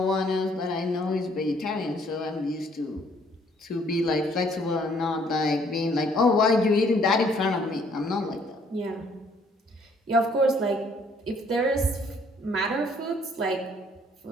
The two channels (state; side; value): normal; both; correlation 0.63